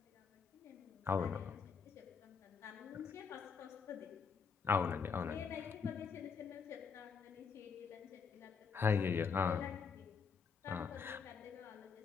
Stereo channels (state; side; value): quieter; right; 5.9 dB